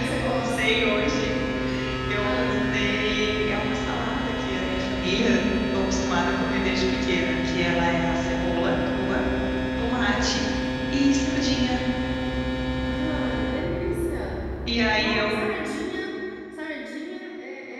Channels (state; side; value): identical; both; correlation 1.00